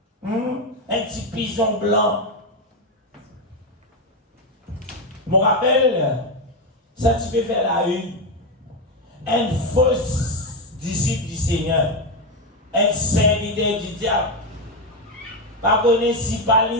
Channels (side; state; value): both; normal; correlation 0.08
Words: Un petit pigeon blanc. Je me rappelle, ça tu peux faire la une. Un faux disciple du Seigneur. Un serviteur du diable. Pas connaître si pas